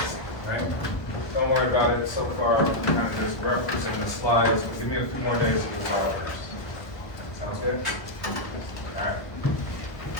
right? Don't worry about it so far. I'm kind of just referencing the slides, but give me a few more days to resolve this. Sounds good?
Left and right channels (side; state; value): right; late; 1.2 ms